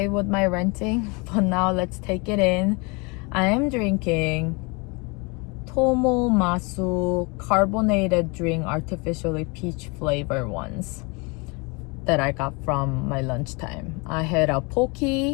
with my ranting, but now let's take it in. I am drinking Tomo Masu carbonated drink, artificially peach flavor ones that I got from my lunchtime. I had a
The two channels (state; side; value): quieter; right; 29.6 dB